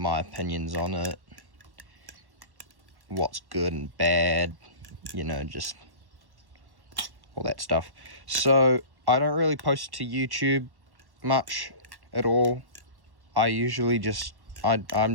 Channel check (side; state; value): left; late; 1.1 ms